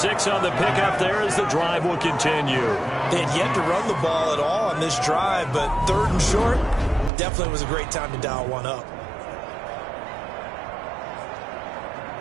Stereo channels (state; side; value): drops out; left; at 7.1 s